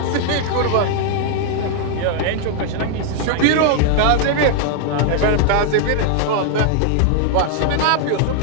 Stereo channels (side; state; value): both; different; correlation 0.00